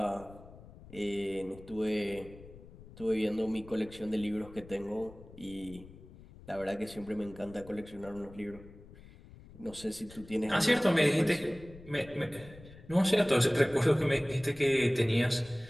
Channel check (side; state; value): left; noise; rumble, 19 dB below the sound